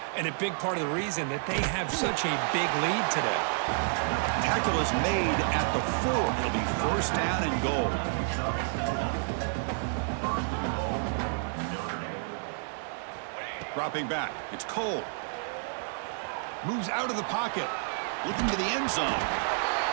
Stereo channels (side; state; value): left; silent; 58 dB below the other